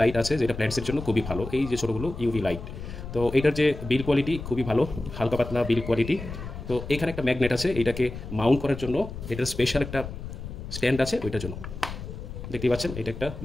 লাইট আছে যেটা প্ল্যান্টসের জন্য খুবই ভালো। এই যে ছোটোগুলো ইউভি লাইট। তো এটার যে বিল কোয়ালিটি খুবই ভালো, হালকা পাতলা বিল কোয়ালিটি। তো এখানে একটা ম্যাগনেট আছে, এটাকে মাউন্ট করার জন্য এটার স্পেশাল একটা স্ট্যান্ড আছে ওইটার জন্য। দেখতেই পাচ্ছেন এটা একটা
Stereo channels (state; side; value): noise; left; rumble, 9 dB below the sound